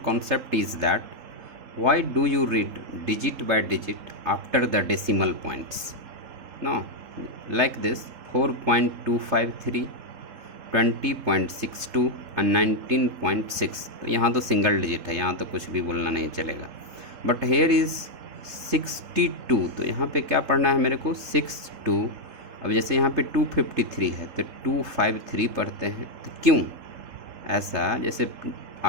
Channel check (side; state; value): left; late; 3.7 ms